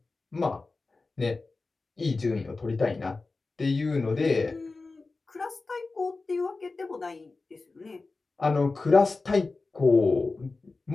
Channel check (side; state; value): right; quieter; 3.7 dB